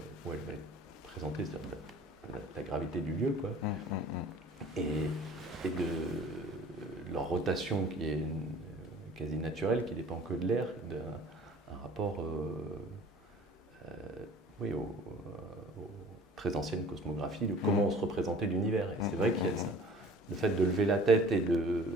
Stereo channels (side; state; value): both; normal; correlation 0.47